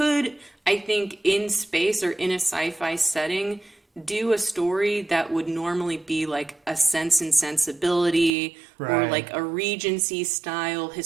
I think, in space or in a sci-fi setting, do a story that would normally be like a Sense and Sensibility or Right. like a Regency style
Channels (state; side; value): drops out; left; at 8.3 s